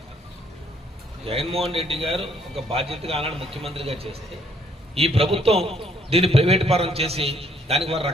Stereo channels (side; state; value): both; normal; correlation 0.66